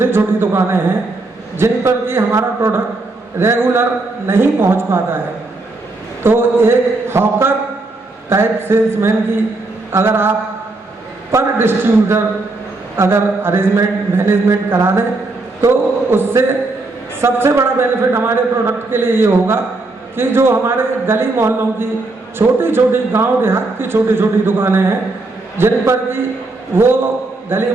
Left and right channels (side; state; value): left; quieter; 3.2 dB